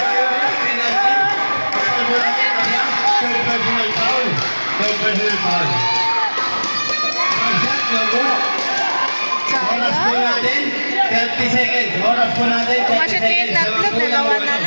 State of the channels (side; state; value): both; inverted; correlation -1.00